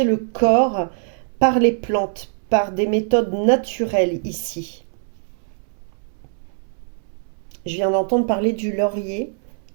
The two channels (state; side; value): silent; left; 61 dB below the other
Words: le corps par les plantes, par des méthodes naturelles ici. Je viens d'entendre parler du laurier.